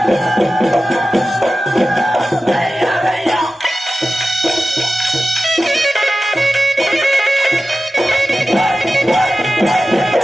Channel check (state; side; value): normal; both; correlation 0.94